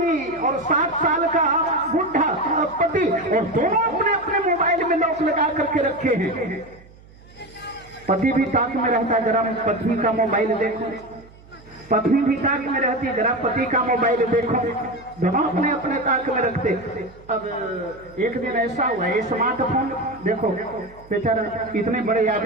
और 60 साल का बुढ़ा पति, और दोनों अपने अपने मोबाइल में लॉक लगा करके रखे हैं। पति भी ताक में रहता, जरा पत्नी का मोबाइल देखो, पत्नी भी ताक में रहती, जरा पति का मोबाइल देखो, दोनों अपने अपने ताक में रखते। अब एक दिन ऐसा हुआ, ये स्मार्टफोन देखो बेचारा इतने बड़े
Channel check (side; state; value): right; noise; hum, 24 dB below the sound